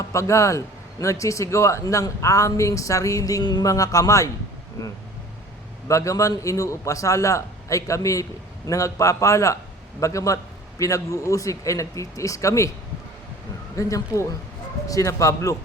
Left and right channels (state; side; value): normal; both; correlation 0.46